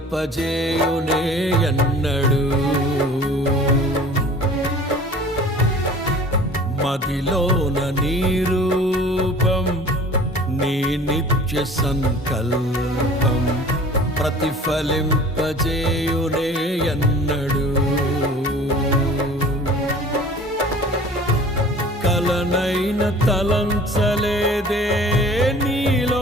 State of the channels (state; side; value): normal; both; correlation 0.45